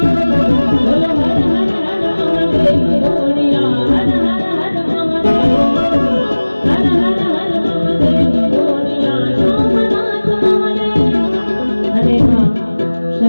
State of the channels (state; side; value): inverted; both; correlation -1.00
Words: बोलो हर हर हर महादेव गोड़िया हर हर हर महादेव हर हर हर महादेव गोड़िया सोमनाथ महादेव। अरे हाँ